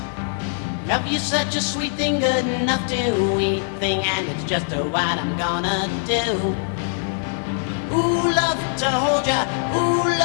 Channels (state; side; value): silent; right; digital silence